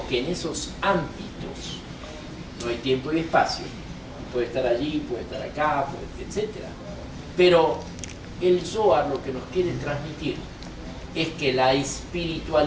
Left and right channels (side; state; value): both; identical; correlation 1.00